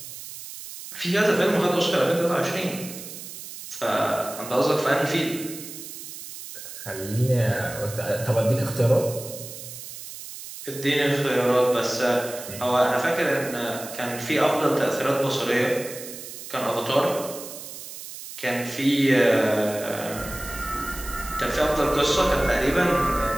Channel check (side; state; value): right; noise; hiss, 12 dB below the sound